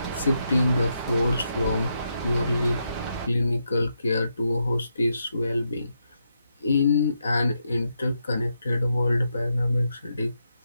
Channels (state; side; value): inverted; both; correlation -0.82